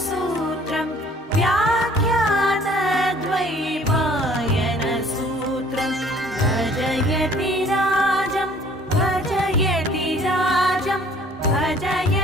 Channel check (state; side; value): normal; both; correlation 0.55